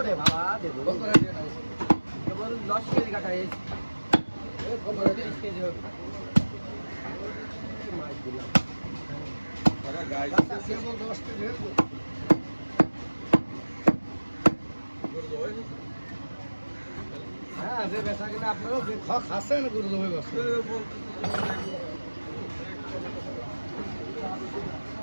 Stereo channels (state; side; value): inverted; both; correlation -1.00